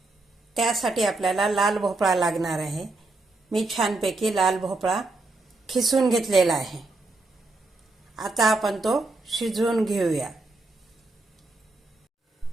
त्यासाठी आपल्याला लाल भोपळा लागणार आहे। मी छानपैकी लाल भोपळा खिसून घेतलेला आहे। आता आपण तो शिजवून घेऊया।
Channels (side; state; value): left; quieter; 3.2 dB